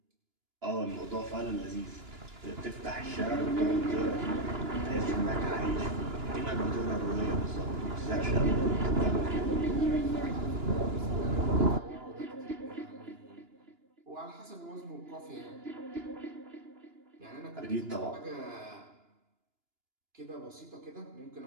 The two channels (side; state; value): left; late; 2.9 ms